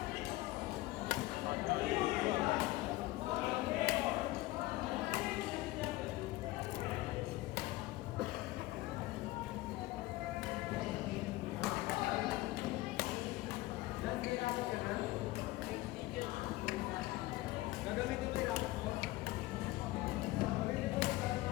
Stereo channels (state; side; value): quieter; right; 18.6 dB